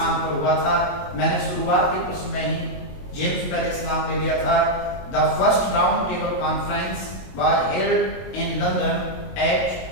पर हुआ था? मैंने शुरुआत के प्रश्न में ही जेम्स पैलेस नाम ले लिया था। The first round table conference was held in London at,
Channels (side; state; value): right; late; 22 ms